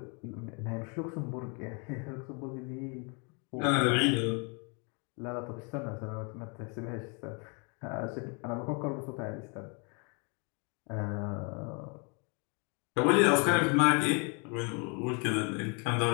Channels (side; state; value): right; quieter; 34.4 dB